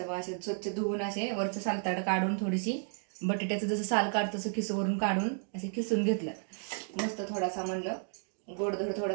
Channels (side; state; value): left; silent; 56 dB below the other